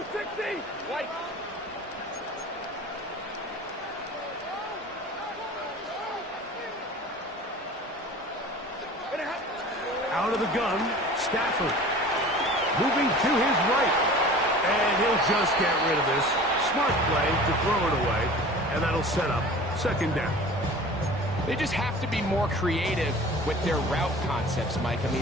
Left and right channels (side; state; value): both; normal; correlation 0.41